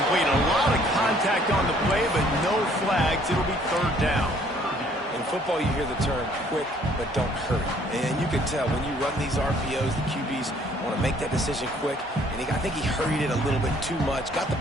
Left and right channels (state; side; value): normal; both; correlation 0.61